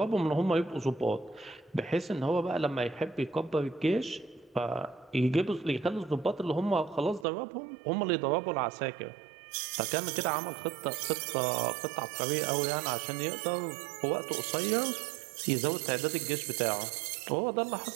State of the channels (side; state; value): left; drops out; at 7.2 s